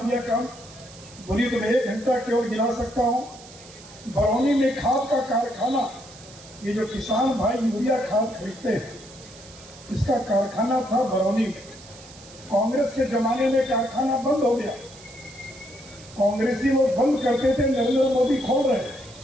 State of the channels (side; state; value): right; noise; hiss, 20 dB below the sound